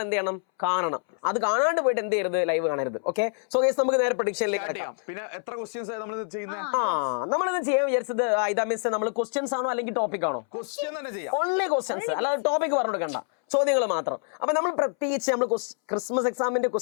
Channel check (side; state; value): right; silent; 61 dB below the other